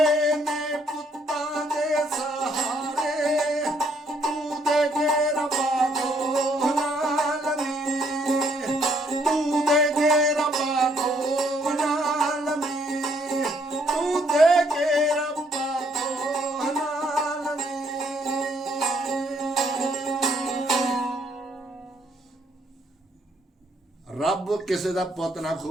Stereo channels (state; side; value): normal; both; correlation 0.68